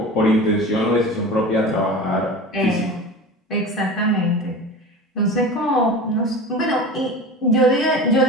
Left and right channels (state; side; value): normal; both; correlation 0.33